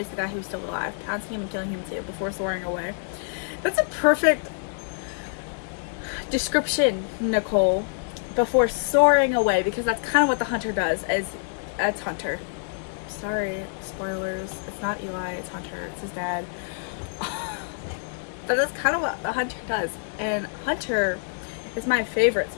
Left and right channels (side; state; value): right; silent; digital silence